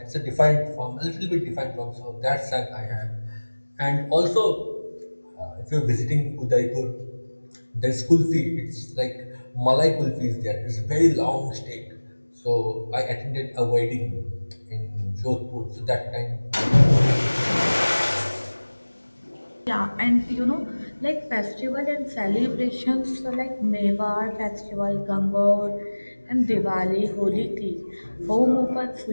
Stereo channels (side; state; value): both; inverted; correlation -1.00